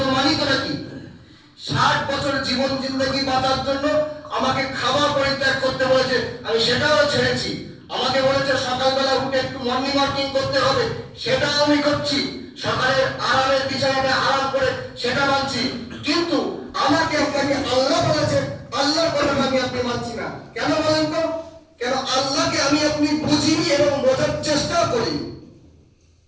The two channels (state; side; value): identical; both; correlation 1.00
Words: তো মানি তো নাকি? 60 বছর জীবন জিন্দেগি বাঁচার জন্য আমাকে খাবার পরিত্যাগ করতে বলেছে, আমি সেটাও ছেড়েছি। আমাকে বলেছে সকালবেলা উঠে একটু মর্নিং ওয়াকিং করতে হবে, সেটাও আমি করছি। সকালে আরামের বিছানায় আরাম করে সেটা মানছি। কিন্তু আমাকে আপনাকে আল্লাহ বলেছে, আল্লাহর কথা আমি আপনি মানছি না। কেন বলেন তো? কেন আল্লাহকে আমি আপনি বুঝিনি এবং বোঝার চেষ্টা করিনি।